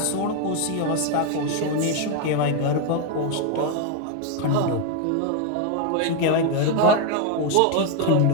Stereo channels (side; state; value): both; different; correlation 0.01